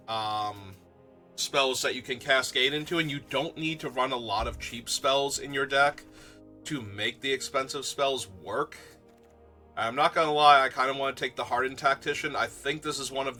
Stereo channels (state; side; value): identical; both; correlation 1.00